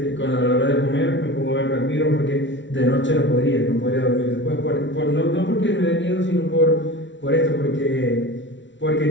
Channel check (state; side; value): late; right; 0.54 ms